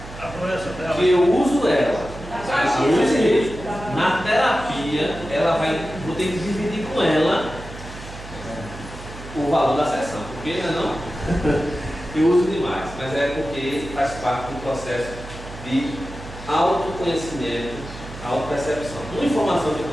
que eu uso ela, a Luiz Rei, na terapia, vou ter que dividir com ela o valor da sessão, porque não, eu uso demais, mas é porque faz parte do processo de autoconhecimento, autopercepção. Uma informação que eu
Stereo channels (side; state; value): right; noise; hum, 14 dB below the sound